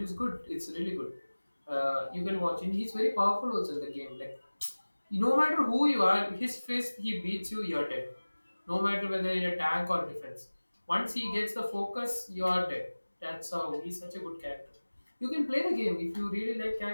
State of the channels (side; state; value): both; inverted; correlation -1.00